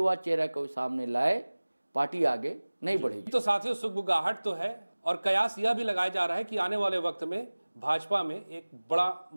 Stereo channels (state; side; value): inverted; both; correlation -1.00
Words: चेहरा को सामने लाए पार्टी आगे नहीं बढ़ेगी। तो साथियों सुगबुगाहट तो है और कयास यह भी लगाया जा रहा है कि आने वाले वक्त में भाजपा में एक बड़ा